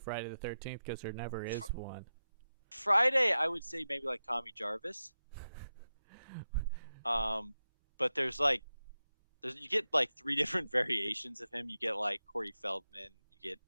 the 13th because there never is one. Friday. I would say maybe like Tommy Jarvis. Um, but you get like three different variations of him. You get like Corey Feldman, you get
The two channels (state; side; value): inverted; both; correlation -0.92